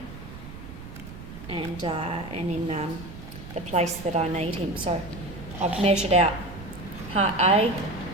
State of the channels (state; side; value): noise; right; rumble, 13 dB below the sound